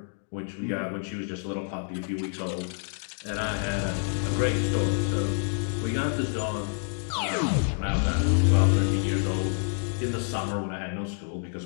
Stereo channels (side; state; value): right; silent; 59 dB below the other